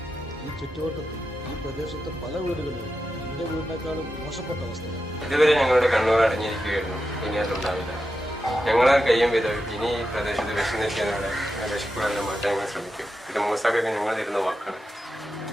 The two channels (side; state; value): both; normal; correlation 0.89